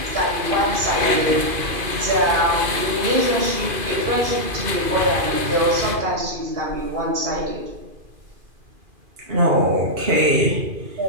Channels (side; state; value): left; late; 2.5 ms